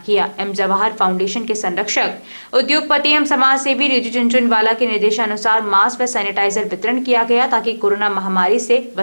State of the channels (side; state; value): both; inverted; correlation -1.00